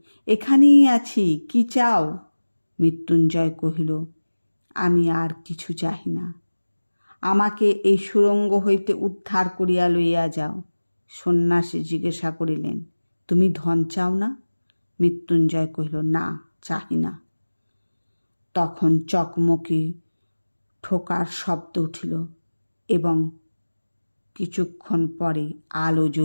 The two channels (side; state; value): both; inverted; correlation -1.00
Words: এখানেই আছি, কি চাও? মৃত্যুঞ্জয় কহিল, আমি আর কিছু চাহি না, আমাকে এই সুড়ঙ্গ হইতে উদ্ধার করিয়া লইয়া যাও। সন্ন্যাসী জিজ্ঞাসা করিলেন, তুমি ধন চাও না? মৃত্যুঞ্জয় কহিল, না, চাহি না। তখন চকমকি ঠোকার শব্দ উঠিল এবং কিছুক্ষণ পরে আলো